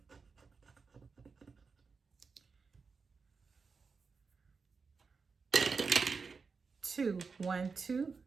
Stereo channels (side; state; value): left; quieter; 4.9 dB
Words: Two, 1, 2.